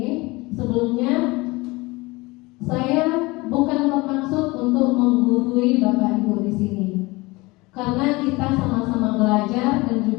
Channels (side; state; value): right; quieter; 23.0 dB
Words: sebelumnya saya bukan bermaksud untuk menggurui Bapak Ibu di sini, karena kita sama-sama belajar dan